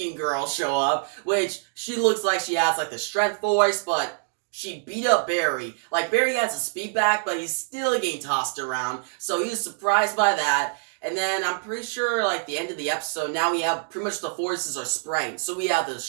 girl show up, which she looks like she has, the strength force, but she beat up Barry. Barry has a speed back, but he's still getting tossed around, so he was surprised by that. And then I'm pretty sure, the end of the episode, now we have pretty much the forces are spraying. So we have the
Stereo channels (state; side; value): silent; left; digital silence